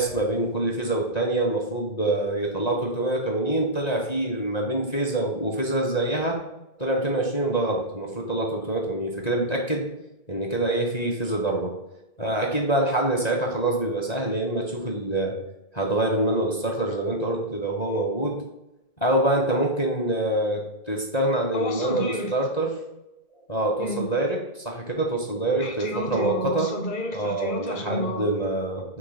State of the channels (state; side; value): late; right; 1.9 ms